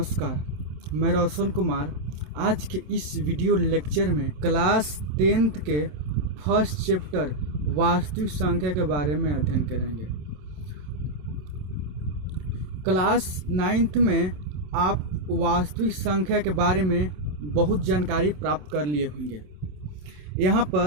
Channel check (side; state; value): left; late; 27 ms